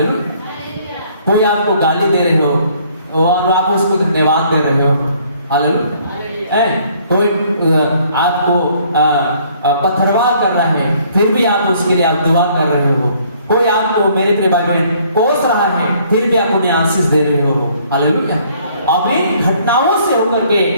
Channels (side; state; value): both; inverted; correlation -0.62